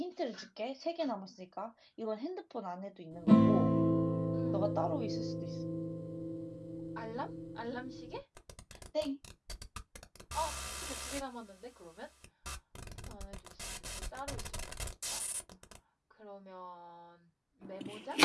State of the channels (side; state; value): both; identical; correlation 1.00